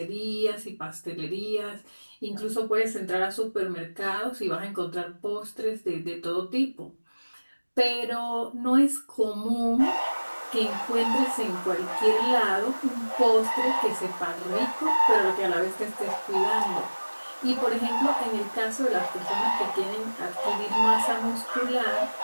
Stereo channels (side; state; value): both; inverted; correlation -1.00